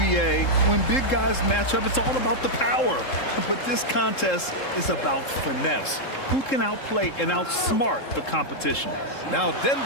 when big guys match up, it's all about the power. But this contest is about finesse. Who can outplay and outsmart the competition? Now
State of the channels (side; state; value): right; late; 3.7 ms